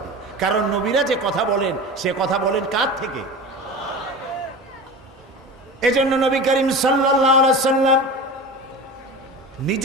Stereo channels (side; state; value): both; normal; correlation 0.31